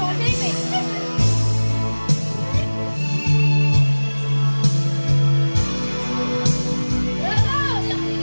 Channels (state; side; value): inverted; both; correlation -1.00